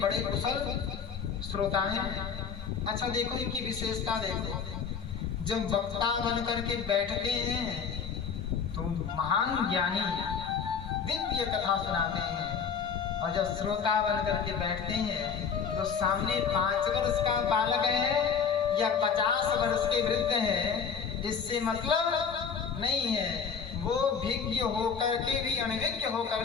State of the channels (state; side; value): quieter; right; 6.5 dB